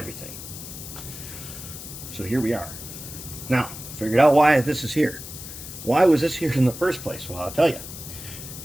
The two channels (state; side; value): noise; left; hiss, 11 dB below the sound